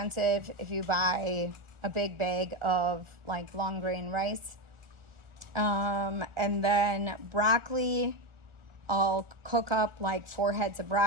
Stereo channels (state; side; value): late; left; 1.4 ms